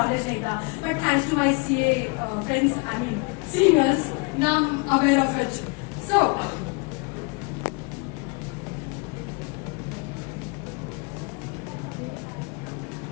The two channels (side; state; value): right; quieter; 30.6 dB